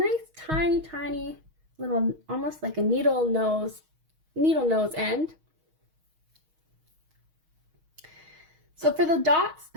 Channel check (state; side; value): late; left; 6.4 ms